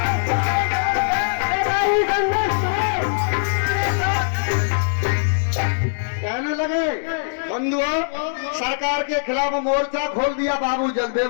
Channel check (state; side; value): silent; right; digital silence